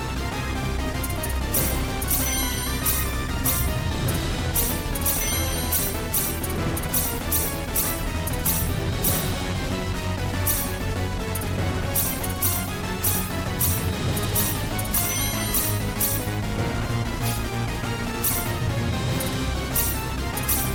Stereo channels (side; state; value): both; identical; correlation 1.00